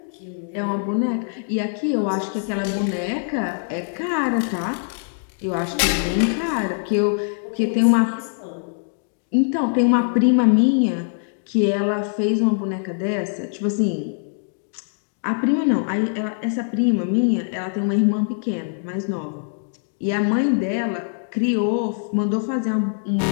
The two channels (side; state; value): right; silent; digital silence